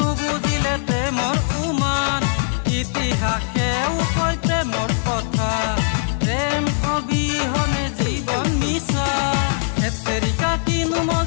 নুবুজিলে প্ৰেমৰ উমান ইতিহাসেও কয় প্ৰেমৰ কথা প্ৰেম অবিহনে জীবন মিছা এতেৰিকা কিনু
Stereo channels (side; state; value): right; silent; 65 dB below the other